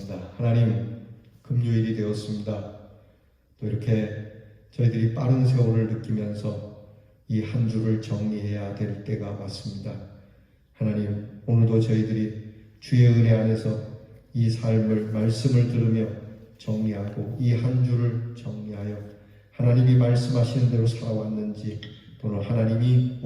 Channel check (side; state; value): both; identical; correlation 1.00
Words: 하나님, 금요일이 되었습니다. 또 이렇게 저희들이 빠른 세월을 느끼면서 이 한 주를 정리해야 될 때가 왔습니다. 하나님, 오늘도 저희들이 주의 은혜 안에서 이 삶을, 말씀을 들으며 정리하고 이 한 주를 정리하여 하나님이 말씀하시는 대로 살아왔는지 또는 하나님이